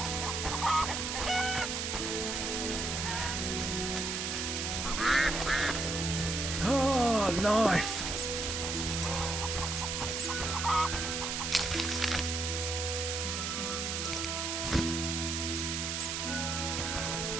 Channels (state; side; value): noise; right; hiss, 2 dB below the sound